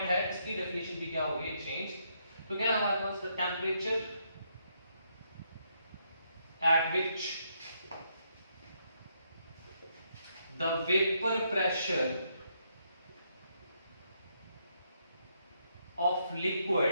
है इसकी डेफिनेशन भी क्या हो गई है, चेंज। तो क्या है हमारे पास, the temperature at which the vapour pressure of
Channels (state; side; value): inverted; both; correlation -0.76